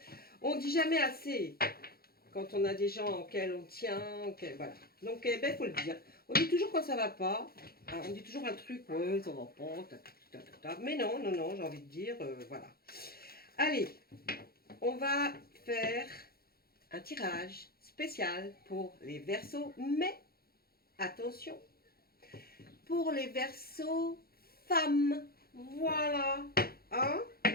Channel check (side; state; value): right; late; 0.44 ms